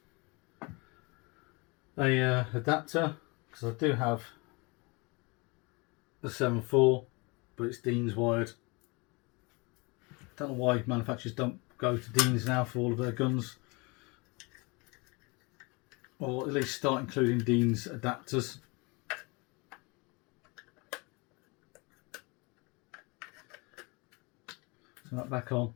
a adapter, because I do have the 7.4, but it's Dean's wired. Don't know why manufacturers don't go to Dean's now for all of their guns, or at least start including Dean's adapters. So that back on,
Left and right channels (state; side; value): quieter; right; 28.0 dB